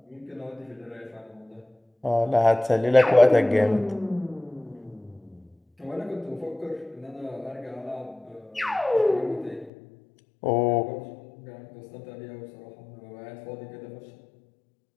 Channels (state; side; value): drops out; right; at 9.7 s